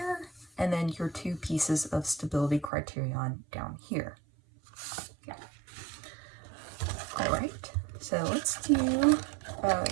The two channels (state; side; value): drops out; left; at 2.7 s